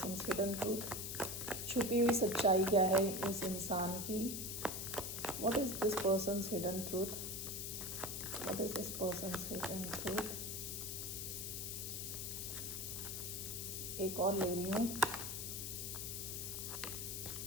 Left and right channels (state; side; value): noise; left; hiss, 4 dB below the sound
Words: hidden truth, छुपी हुई सच्चाई क्या है इस इंसान की, what is this person's hidden truth, what is this person's hidden truth. एक और ले रही हूँ,